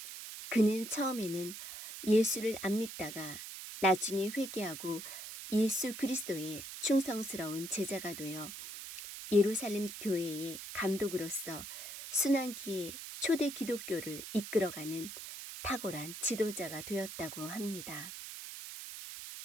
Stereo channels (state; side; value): noise; right; hiss, 10 dB below the sound